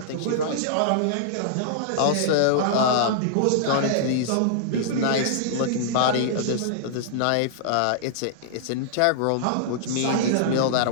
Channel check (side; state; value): both; different; correlation -0.01